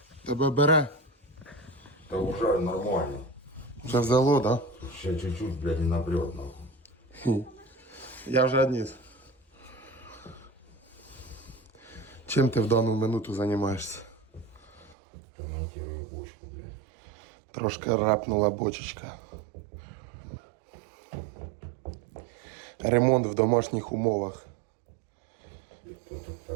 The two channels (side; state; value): left; drops out; at 15.0 s